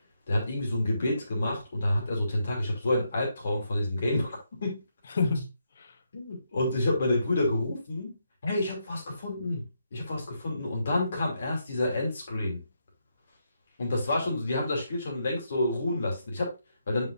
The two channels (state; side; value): inverted; both; correlation -0.81